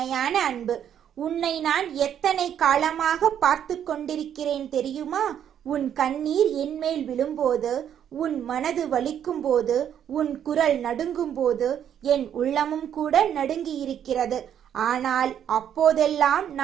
அன்பு. உன்னை நான் எத்தனை காலமாக பார்த்து கொண்டிருக்கிறேன் தெரியுமா? உன் கண்ணீர் என்மேல் விழும்போது, உன் மனது வலிக்கும் போது, உன் குரல் நடுங்கும் போது என் உள்ளமும் கூட நடுங்கி இருக்கிறது. ஆனால் அப்போதெல்லாம்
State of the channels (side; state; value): left; quieter; 9.5 dB